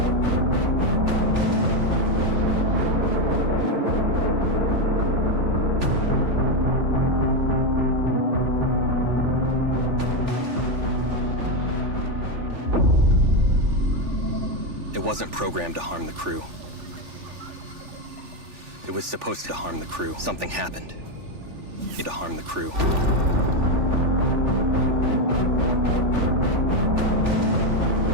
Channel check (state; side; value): late; left; 3.4 ms